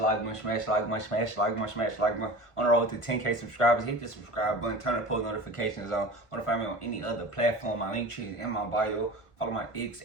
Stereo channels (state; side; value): late; right; 1.5 ms